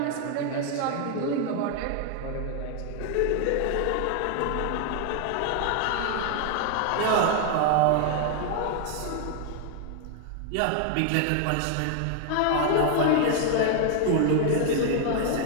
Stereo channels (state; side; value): different; both; correlation 0.00